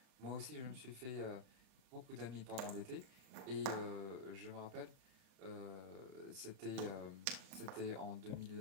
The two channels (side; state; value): left; late; 32 ms